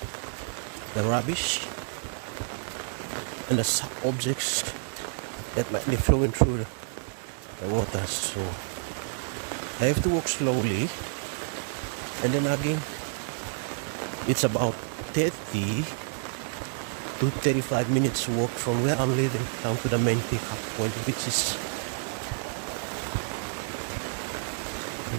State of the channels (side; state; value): left; silent; digital silence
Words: the rubbish and the sharp objects that might be flowing through the water. So I have to walk slowly, and then again it's about 30 to 35 minutes walk from where I'm living down to the main pickup point, which is